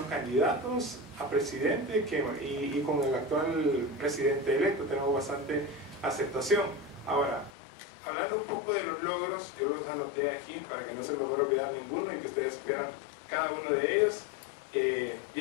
candidatos a presidente y con el actual presidente electo tenemos bastante aceptación. Ahora, hablando un poco de los logros, yo los anoté aquí para que no se me fuera a olvidar ninguno y que ustedes supieran cada uno de ellos.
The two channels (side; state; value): right; drops out; at 7.5 s